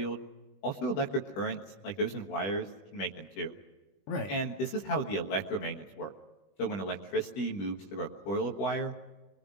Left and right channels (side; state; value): right; late; 20 ms